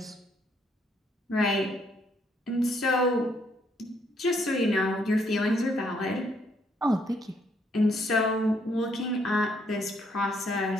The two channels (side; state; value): both; normal; correlation 0.70